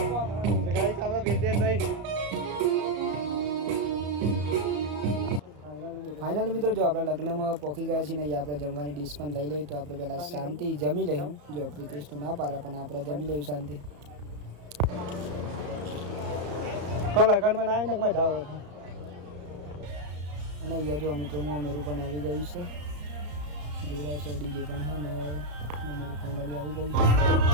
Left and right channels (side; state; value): left; late; 34 ms